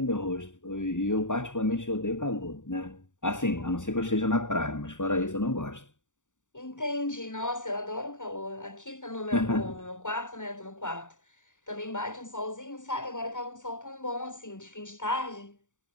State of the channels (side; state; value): right; late; 0.86 ms